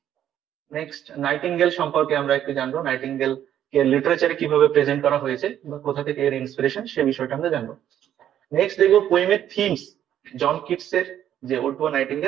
Next nightingale সম্পর্কে আমরা একটু জানবো, নাইটিঙ্গেল কে লিটারেচারে কিভাবে প্রেজেন্ট করা হয়েছে বা কোথা থেকে এর ইন্সপিরেশন সে বিষয়টা আমরা জানবো। নেক্সট দেখবো পোয়েমের থিমস, জন কিটস এর যে ওড টু আ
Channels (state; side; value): quieter; left; 10.7 dB